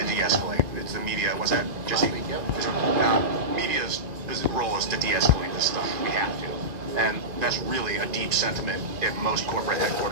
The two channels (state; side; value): late; left; 1.9 ms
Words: de-escalate. It's the media. Was that Jesse? Media's role is to de-escalate this stuff. We have to, and that's really a deep sentiment at most corporate